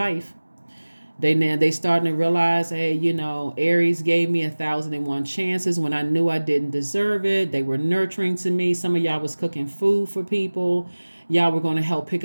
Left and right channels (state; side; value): inverted; both; correlation -1.00